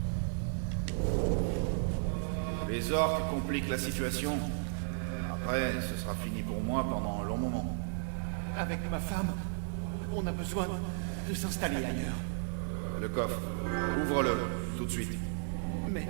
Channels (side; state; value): left; silent; digital silence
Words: Les orques compliquent la situation. Après, ce sera fini pour moi pendant un long moment. Avec ma femme, on a besoin de s'installer ailleurs. Le coffre, ouvre-le, tout de suite. Mais